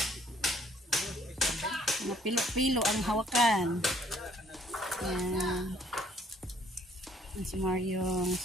pilo-pilo ang hawakan. Yan. Yan si Maryong.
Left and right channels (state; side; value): normal; both; correlation 0.62